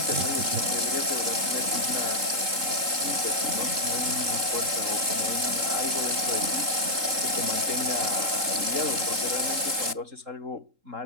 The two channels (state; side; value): late; left; 3.7 ms